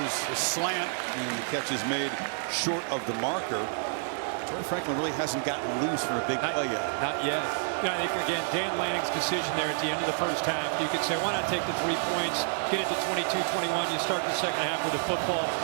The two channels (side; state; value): left; silent; digital silence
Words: a slant, and the catch is made short of the marker. Troy Franklin really hasn't gotten loose for a big play yet. Not yet. Yeah, I think, again, Dan Lanning's decision there at the end of the first half, you could say, why not take the 3 points, get it to 22-21, you start the second half with a football.